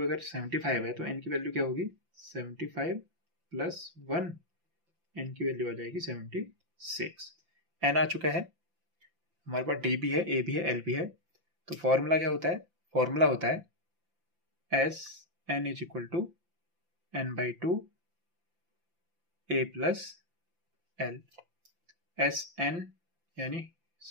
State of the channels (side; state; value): left; late; 5.8 ms